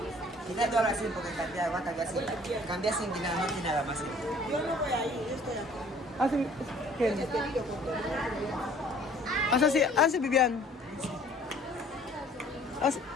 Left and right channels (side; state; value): both; normal; correlation 0.54